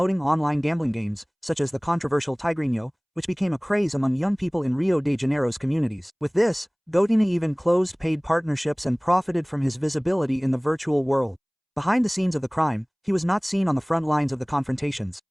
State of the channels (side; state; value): both; identical; correlation 1.00